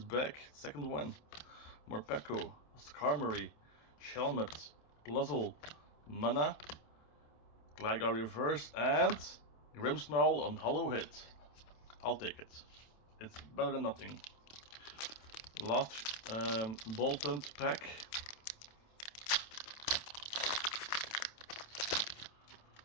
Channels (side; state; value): right; late; 27 ms